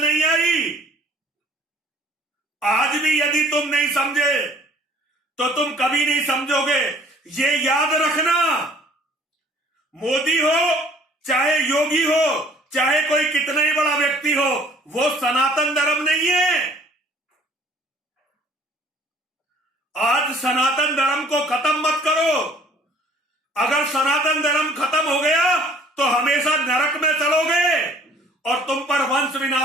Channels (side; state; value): both; normal; correlation 0.55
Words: नहीं आई। आज भी यदि तुम नहीं समझे तो तुम कभी नहीं समझोगे। ये याद रखना, मोदी हो चाहे योगी हो चाहे कोई कितना ही बड़ा व्यक्ति हो, वो सनातन धर्म नहीं है। आज सनातन धर्म को खत्म मत करो। अगर सनातन धर्म खत्म हो गया तो हमेशा नरक में चलोगे और तुम पर वंश